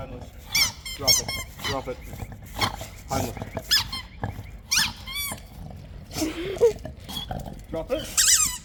Drop it. Drop it. Homeless. Drop it.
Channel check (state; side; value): identical; both; correlation 1.00